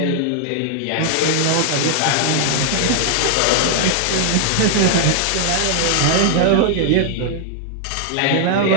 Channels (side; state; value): both; different; correlation 0.00